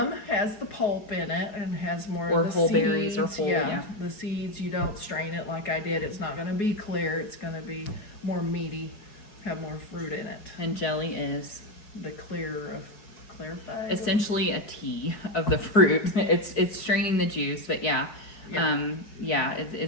has the pulp in it and has more Or of the whole seeds. berries or whole, yeah. The seeds, you don't strain it like I did. It's not going to be clear. It's going to be more meaty, have more fruit in it. And jelly is The clear of clarified. essentially a tea of the fruit. It's straining the juice, but yeah. Yeah.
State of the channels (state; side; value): late; right; 4.6 ms